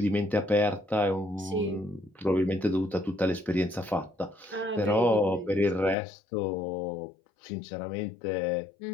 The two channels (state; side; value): drops out; right; at 6.0 s